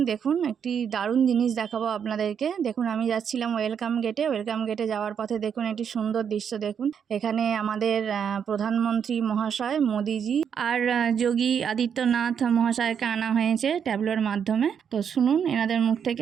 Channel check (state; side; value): quieter; left; 7.6 dB